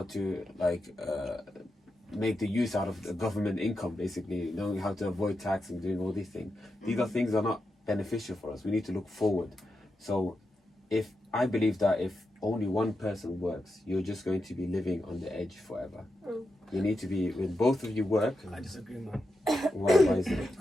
to, like, make the use out of the government income, basically, knowing how to avoid tax and doing all these things. These are things that are not beneficial for us. We need to look forward. So I believe that if only one person works, you're just going to be living on the edge forever. You need to be, when both of you work, I disagree, man. why is it?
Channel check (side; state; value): both; normal; correlation 0.88